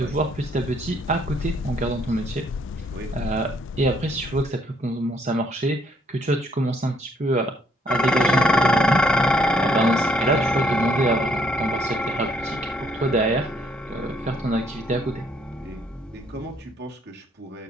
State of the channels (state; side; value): normal; both; correlation 0.68